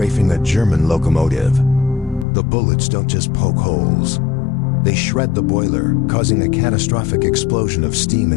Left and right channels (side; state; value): right; drops out; at 2.2 s